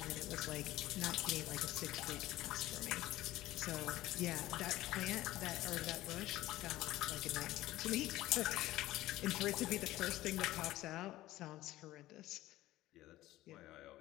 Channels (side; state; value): right; quieter; 16.1 dB